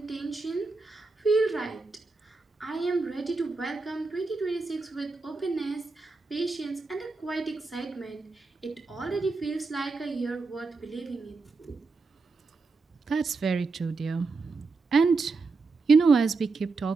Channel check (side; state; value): left; quieter; 4.0 dB